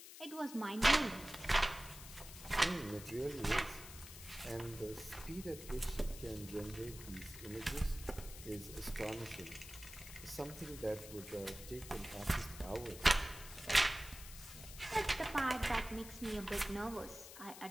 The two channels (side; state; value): left; noise; hiss, 13 dB below the sound